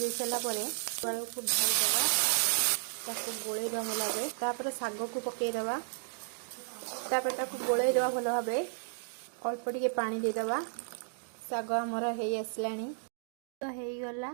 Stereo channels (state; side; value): silent; left; digital silence